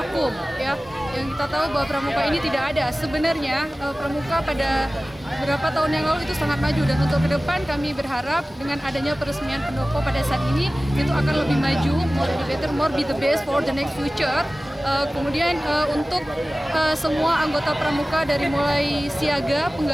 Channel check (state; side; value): normal; both; correlation 0.97